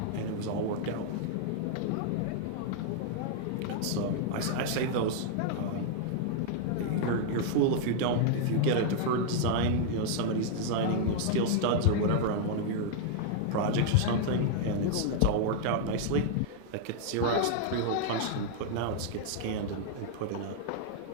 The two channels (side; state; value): both; different; correlation -0.01